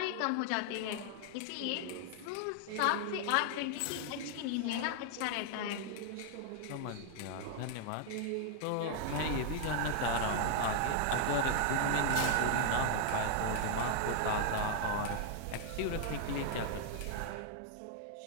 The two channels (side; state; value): both; different; correlation 0.00